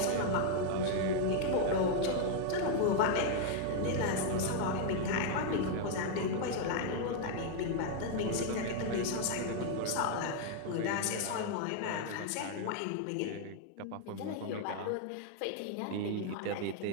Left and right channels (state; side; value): different; both; correlation 0.00